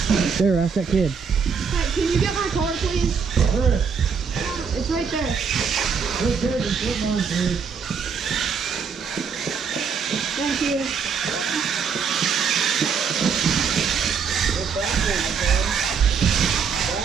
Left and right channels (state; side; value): quieter; left; 6.1 dB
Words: not. There, ask that kid. Hey, can you get my car, please? Where? It's right there. Let's take it. Come on, please. Thank you. Go backwards, son.